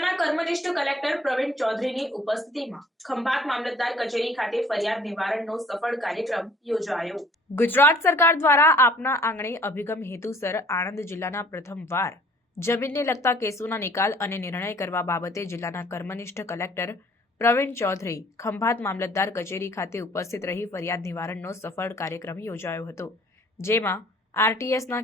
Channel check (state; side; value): normal; both; correlation 0.55